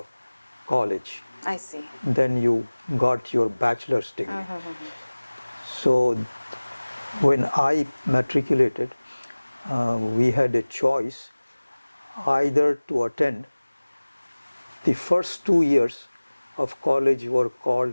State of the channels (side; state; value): both; inverted; correlation -1.00